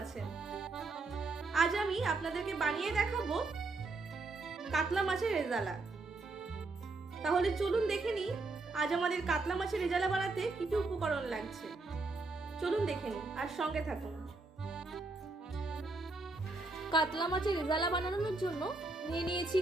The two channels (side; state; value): left; quieter; 3.4 dB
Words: আছেন। আজ আমি আপনাদেরকে বানিয়ে দেখাবো কাতলা মাছের রেজালা। তাহলে চলুন দেখে নিই আজ আমাদের কাতলা মাছের রেজালা বানাতে কি কি উপকরণ লাগছে। চলুন দেখে নিই আর সঙ্গে থাকুন। কাতলা মাছের রেজালা বানানোর জন্য নিয়েছি